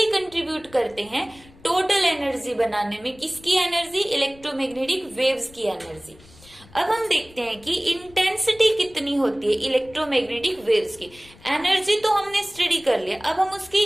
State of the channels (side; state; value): left; noise; rumble, 24 dB below the sound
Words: कंट्रीब्यूट करते हैं टोटल एनर्जी बनाने में। किसकी एनर्जी, इलेक्ट्रोमैग्नेटिक वेव्स की एनर्जी। अब हम देखते हैं कि इंटेंसिटी कितनी होती है इलेक्ट्रोमैग्नेटिक वेव्स की। एनर्जी तो हमने स्टडी कर लिया, अब हम उसकी